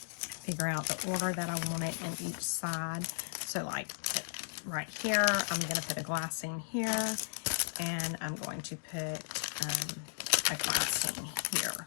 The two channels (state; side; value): silent; right; digital silence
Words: figure out the order that I want it in each side. So like right here, I'm going to put a glassine here. And I'm going to put a glassine here.